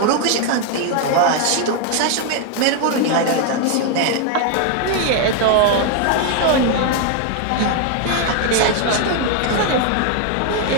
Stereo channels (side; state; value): both; different; correlation 0.00